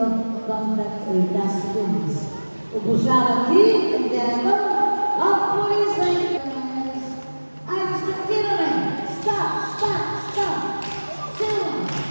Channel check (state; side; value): inverted; both; correlation -1.00